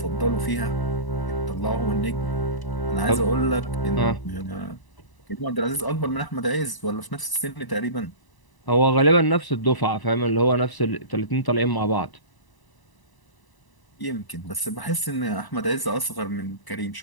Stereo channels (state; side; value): late; right; 1.0 ms